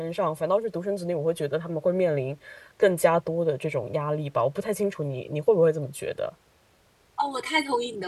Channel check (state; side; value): identical; both; correlation 1.00